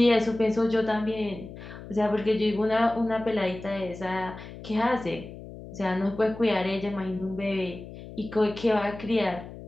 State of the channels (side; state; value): left; noise; hum, 14 dB below the sound